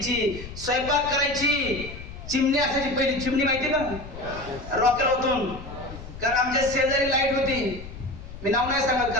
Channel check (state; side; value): noise; left; rumble, 13 dB below the sound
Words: स्वयंपाक करायची. चिमणी असायची पहिली, चिमणी माहिती का, रॉकेल होतून. कारण आमच्या शेजारी लाईट होती, मी नाव नाही सांगत